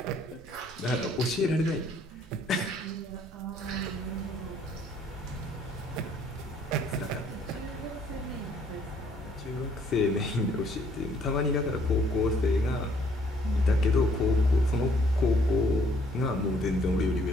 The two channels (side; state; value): both; normal; correlation 0.63